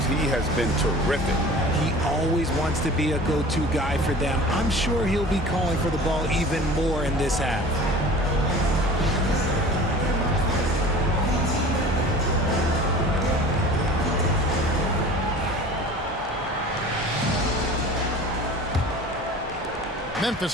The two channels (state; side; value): normal; both; correlation 0.41